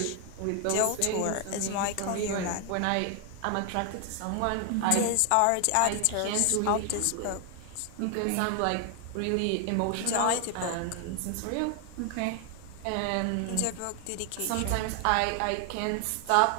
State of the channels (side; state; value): both; different; correlation 0.00